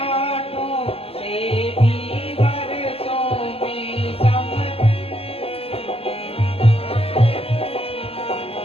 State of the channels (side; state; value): right; late; 0.28 ms